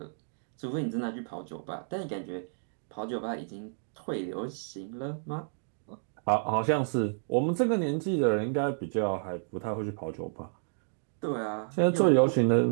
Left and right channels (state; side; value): silent; left; digital silence